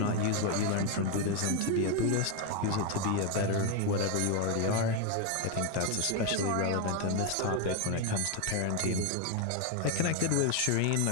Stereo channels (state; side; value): different; both; correlation 0.01